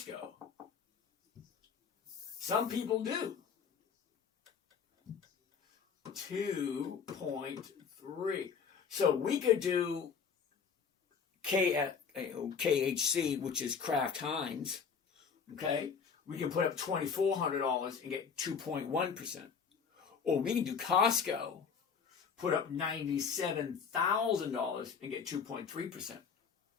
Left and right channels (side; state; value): right; quieter; 6.3 dB